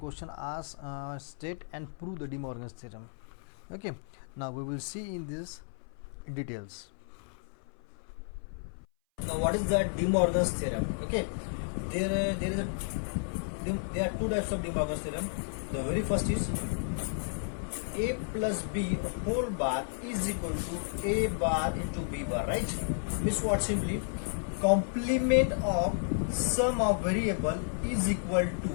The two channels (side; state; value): right; silent; 56 dB below the other